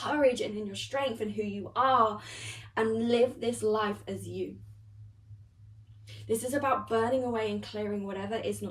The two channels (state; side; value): identical; both; correlation 1.00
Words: and in your strength and who you are, and live this life as you. This is about burning away and clearing whatever is